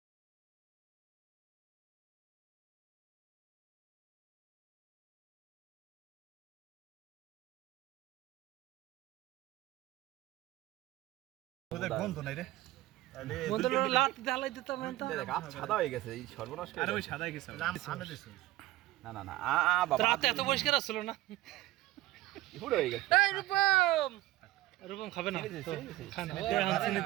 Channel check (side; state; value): left; quieter; 16.9 dB